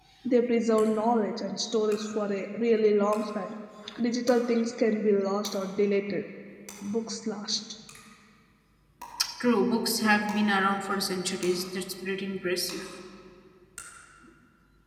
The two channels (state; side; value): identical; both; correlation 1.00